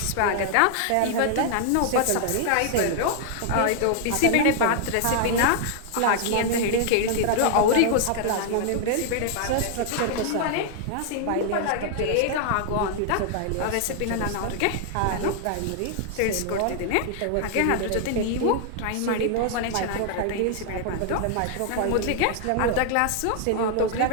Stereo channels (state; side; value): different; both; correlation 0.00